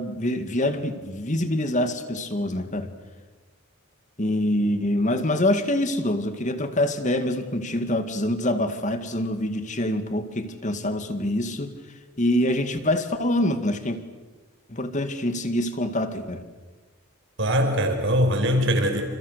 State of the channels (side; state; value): both; normal; correlation 0.48